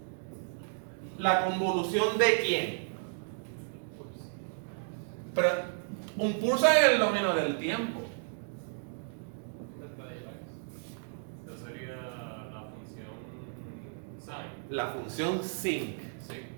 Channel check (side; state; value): left; silent; digital silence